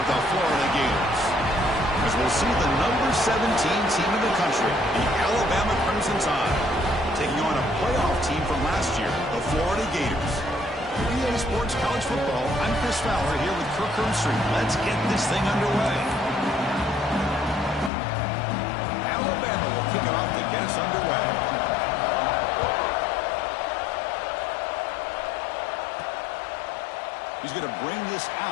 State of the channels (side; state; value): right; drops out; at 17.9 s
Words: the Florida Gators. As we'll see the number 17 team in the country, the Alabama Crimson Tide, taking on a playoff team from last year, the Florida Gators. EA Sports College Football, I'm Chris Fowler here with Kirk Herbstreit. Let's get this thing underway. Alabama will kick it off to get us underway. He's going to bring this